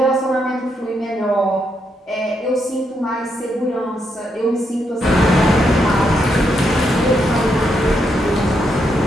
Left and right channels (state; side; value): normal; both; correlation 0.79